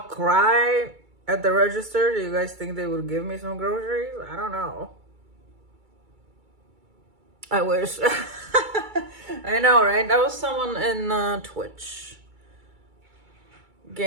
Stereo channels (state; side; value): late; left; 2.3 ms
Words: cry at the register, do you guys think they would give me some groceries? I don't know. I wish. I know, right? That was someone in Twitch.